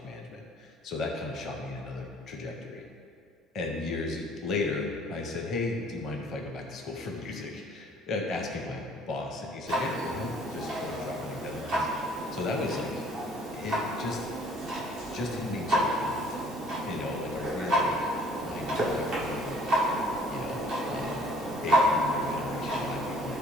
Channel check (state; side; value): normal; both; correlation 0.56